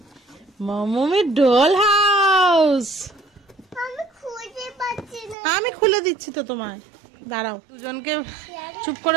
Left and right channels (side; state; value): left; drops out; at 5.4 s